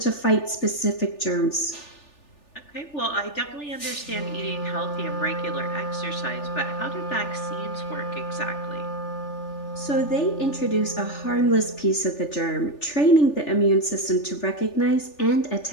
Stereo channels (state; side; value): late; right; 3.4 ms